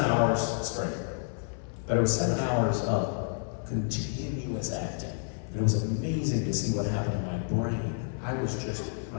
hours straight, but it was 7 hours of continuous acting, and it was amazing to see what happened in my brain.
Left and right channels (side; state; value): right; silent; 58 dB below the other